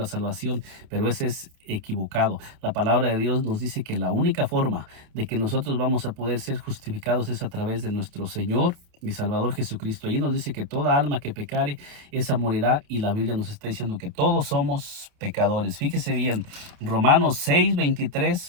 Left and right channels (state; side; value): late; left; 29 ms